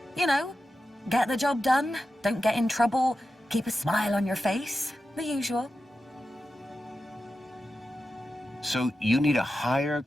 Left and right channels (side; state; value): both; normal; correlation 0.91